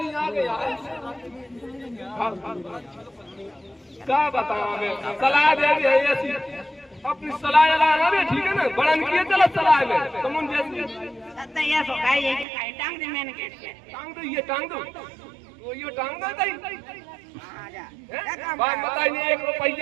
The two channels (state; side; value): drops out; left; at 12.5 s